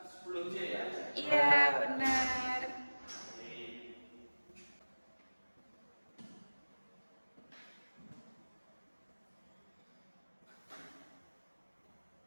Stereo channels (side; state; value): both; inverted; correlation -1.00